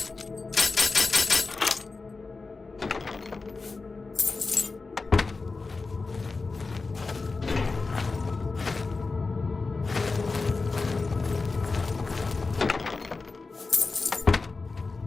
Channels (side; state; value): right; quieter; 4.0 dB